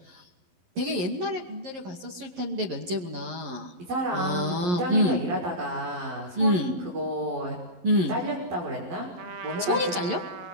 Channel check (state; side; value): late; left; 11 ms